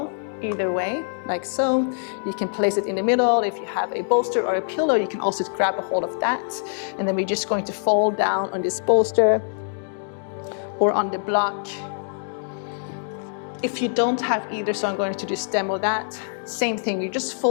Either way, like so. You can place it in the middle. If you have a bolster or a pillow, you can also grab a hold of that. And then we're just going to fold down on this bolster or on the block. If you don't have either, so I'm going to just demo that. Same thing, you're just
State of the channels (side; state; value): right; silent; digital silence